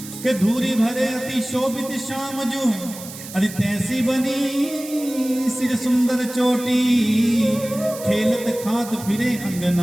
कि धूरी भरे अति शोभित श्याम जो, अरे तैसी बनी सिर सुंदर चोटी, खेलत खात फिरे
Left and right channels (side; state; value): right; noise; hiss, 13 dB below the sound